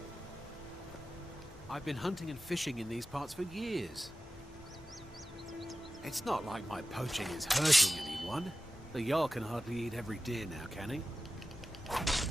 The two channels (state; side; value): normal; both; correlation 0.94